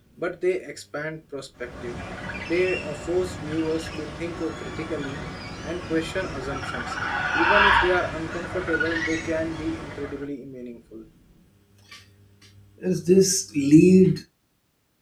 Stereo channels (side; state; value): both; identical; correlation 1.00